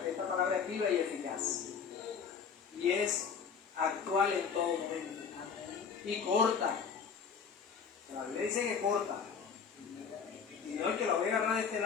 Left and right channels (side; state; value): right; quieter; 6.4 dB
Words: esta palabra es viva y eficaz. Y es actual en todo momento. Y corta. La Biblia dice que corta. Y no es que lo voy a agarrar de este